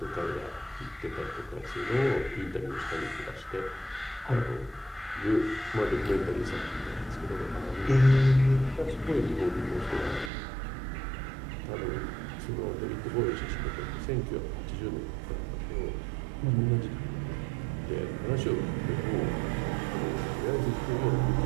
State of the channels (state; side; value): drops out; left; at 10.3 s